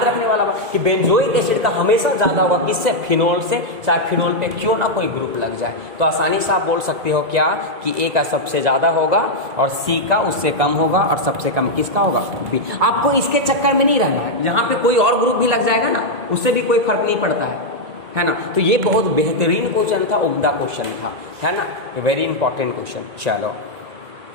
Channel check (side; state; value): left; late; 1.9 ms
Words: रखने वाला बात कि बेंजोइक एसिड का हमेशा ज्यादा होगा किससे, फिनोल से, चाहे फिनोल पे क्यों ना कोई ग्रुप लग जाए। तो आसानी से आप बोल सकते हो क्या कि ए का सबसे ज्यादा होगा और सी का उससे कम होगा और सबसे कम किसका होगा, बी। आपको इसके चक्कर में नहीं रहना है, यहाँ पे कोई और ग्रुप भी लग जाएगा ना, उससे भी कोई फर्क नहीं पड़ता है ना। तो ये बहुत बेहतरीन क्वेश्चन था, उम्दा क्वेश्चन था, है ना, वेरी इंपॉर्टेंट क्वेश्चन। चलो,